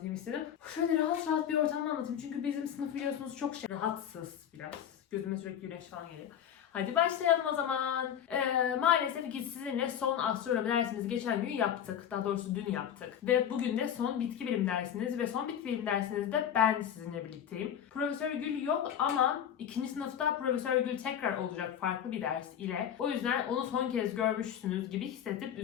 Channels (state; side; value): quieter; right; 9.4 dB